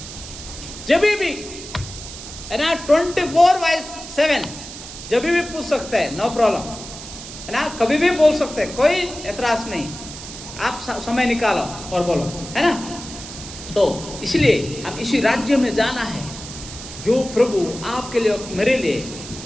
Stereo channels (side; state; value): right; noise; hiss, 12 dB below the sound